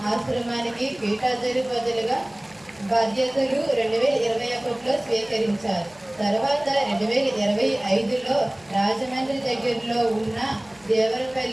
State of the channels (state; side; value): noise; left; hum, 28 dB below the sound